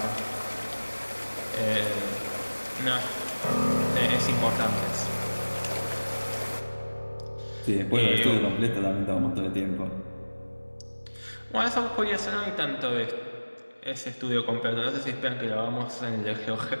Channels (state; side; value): inverted; both; correlation -1.00